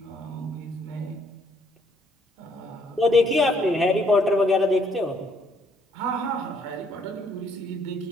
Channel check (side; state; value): both; normal; correlation 0.67